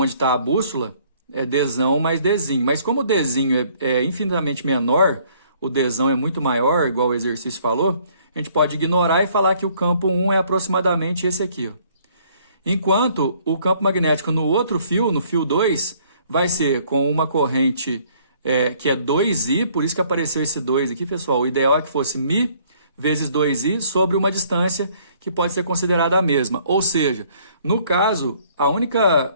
está a bússola é Dzão mais Dzinho. Mas como o Dzinho é infinitamente menor, o Dzão é muito maior, igual o exercício falou, a gente pode ignorar e falar que o campo 1 é aproximadamente esse aqui, ó. Enquanto o campo magnético no outro fio, no fio 2, vai ser com uma corrente que é 2I, por isso que apareceu esse 2 aqui, pessoal. O ideal é que fosse Mi vezes 2I sobre uma distância que pode ser considerada a mesma. Ou seja, no caso,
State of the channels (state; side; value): inverted; both; correlation -0.62